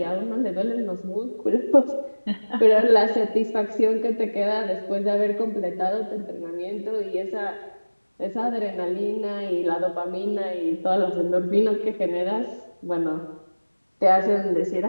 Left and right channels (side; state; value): both; inverted; correlation -1.00